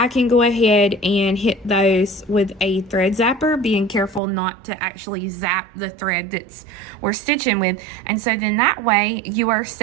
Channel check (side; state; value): left; drops out; at 4.2 s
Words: can go ahead and hit those with a thread zapper, being careful not to actually zap the thread that's we're stitching with. And so then that way you are